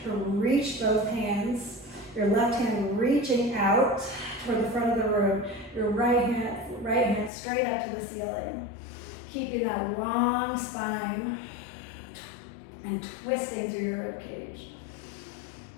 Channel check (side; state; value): right; drops out; at 7.3 s